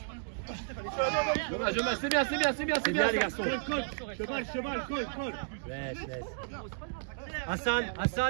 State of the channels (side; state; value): left; silent; digital silence